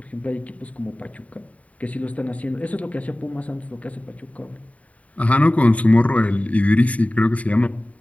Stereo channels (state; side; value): late; right; 0.068 ms